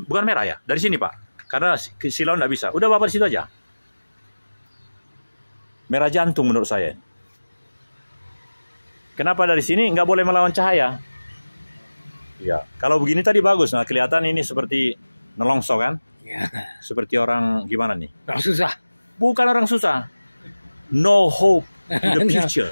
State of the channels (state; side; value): inverted; both; correlation -1.00